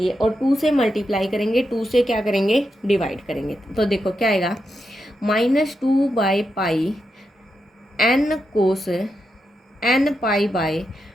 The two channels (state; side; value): normal; both; correlation 0.86